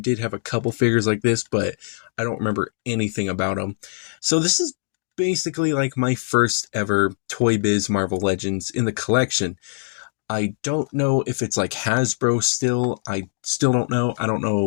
have a couple figures like this, but I don't remember anything about them. So this is basically like my first ever Toy Biz Marvel Legends in the collection. I don't know if it's like Hasbro still. I still don't know. I don't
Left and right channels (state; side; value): silent; right; digital silence